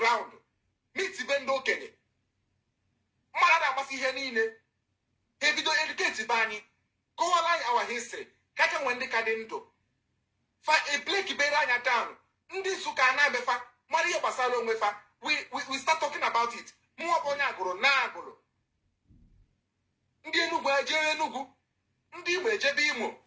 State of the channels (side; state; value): both; identical; correlation 1.00